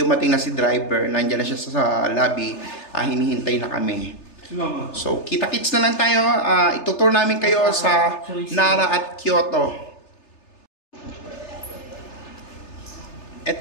na si driver, nandiyan na siya sa lobby, hinihintay na kami. So, kita-kits na lang tayo. Itutour namin kayo sa Nara at Kyoto.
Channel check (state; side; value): late; right; 3.3 ms